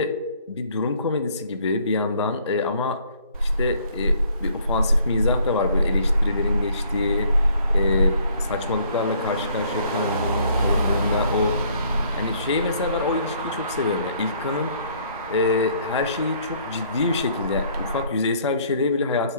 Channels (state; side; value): inverted; both; correlation -0.61